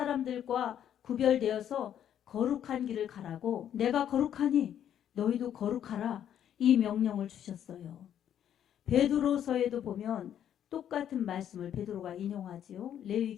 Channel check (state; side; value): quieter; right; 10.0 dB